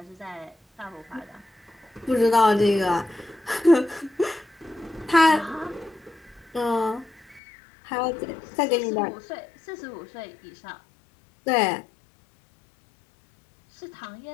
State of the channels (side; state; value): right; drops out; at 7.4 s